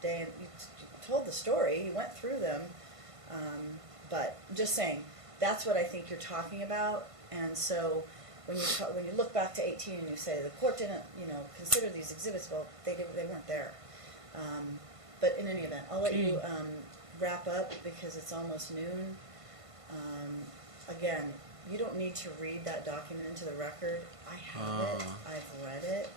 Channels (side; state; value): left; late; 1.5 ms